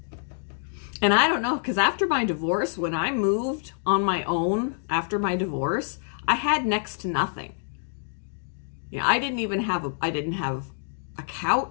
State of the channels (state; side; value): silent; right; digital silence